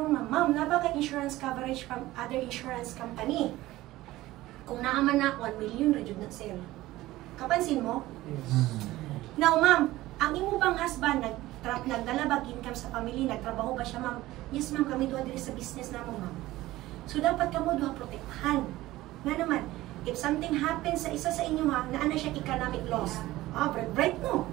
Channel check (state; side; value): quieter; left; 17.0 dB